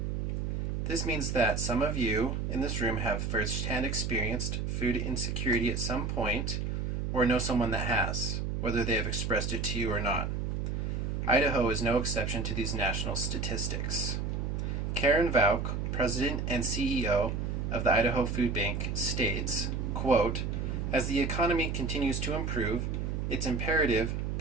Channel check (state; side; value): noise; right; hum, 1 dB below the sound